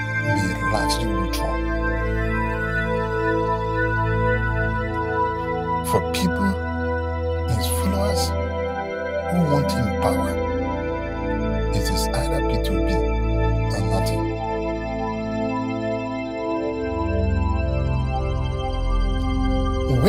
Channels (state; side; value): identical; both; correlation 1.00